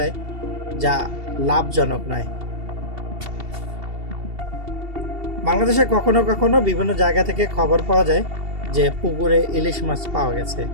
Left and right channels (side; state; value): left; late; 2.7 ms